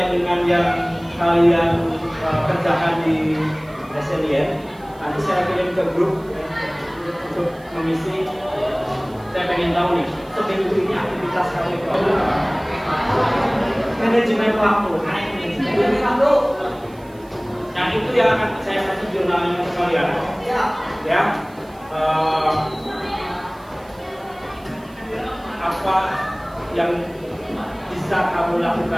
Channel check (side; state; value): right; noise; hiss, 28 dB below the sound